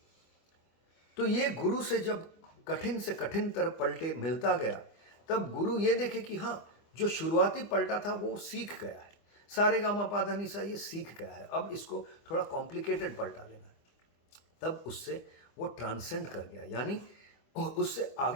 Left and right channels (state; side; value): late; right; 25 ms